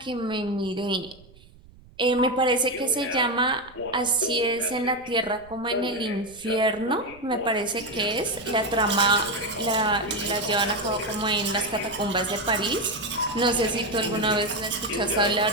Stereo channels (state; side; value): noise; right; rumble, 24 dB below the sound